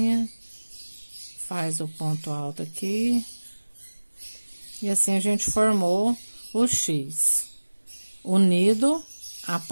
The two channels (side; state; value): both; inverted; correlation -1.00